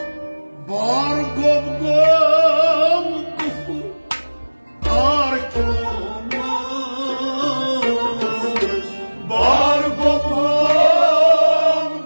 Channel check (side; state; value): both; inverted; correlation -1.00